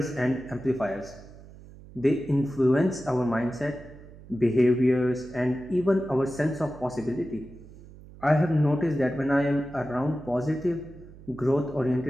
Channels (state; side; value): noise; right; hum, 19 dB below the sound